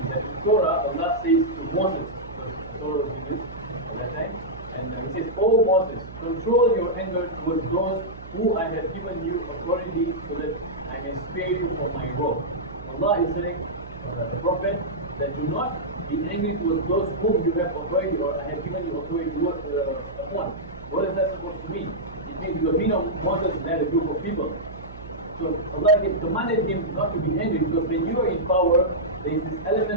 that in Torah, Allah says to Moses, because Torah was revealed at that time, and he says, "O Moses, control your anger towards those who I have given you authority so that I may spare you from my wrath." Allah is saying, the Prophet, that do not be angry towards those whom you have authority or I have given you authority upon. What is that supposed to mean? It means because we know Moses led a group of people. So Allah commanded him not to be angry, because when you are in power, there is this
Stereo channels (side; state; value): right; noise; hum, 15 dB below the sound